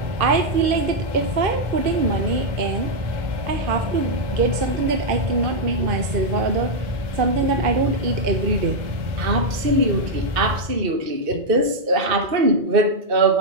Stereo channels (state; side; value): late; left; 2.6 ms